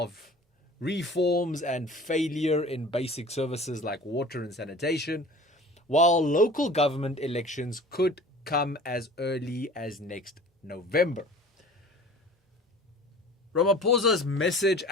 reforms and failure in basic services like water and sanitation, while local government elections could come as early as next November. Ramaphosa's message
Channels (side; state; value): both; normal; correlation 0.43